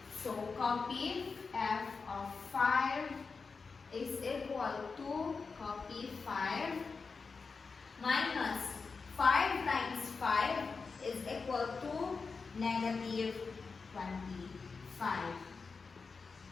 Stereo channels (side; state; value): right; quieter; 4.7 dB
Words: So, copy f of 5 is equal to, copy 5, minus 5 times 5 is equal to negative 25.